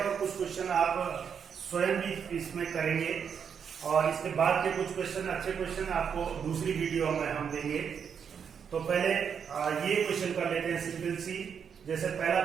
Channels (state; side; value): quieter; left; 7.2 dB